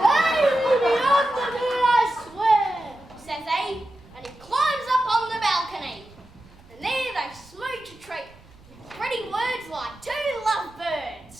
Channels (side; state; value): right; noise; rumble, 25 dB below the sound